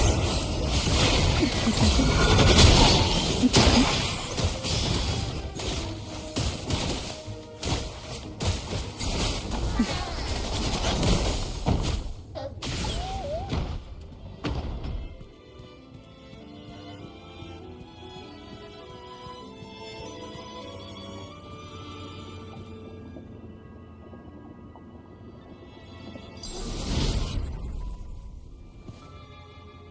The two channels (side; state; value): both; identical; correlation 1.00